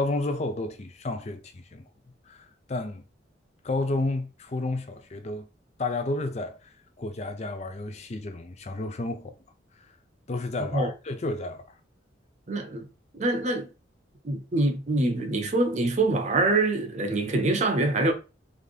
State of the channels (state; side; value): normal; both; correlation 0.43